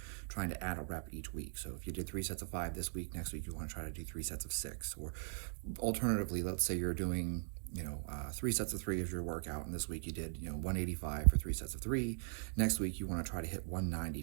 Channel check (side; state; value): left; silent; digital silence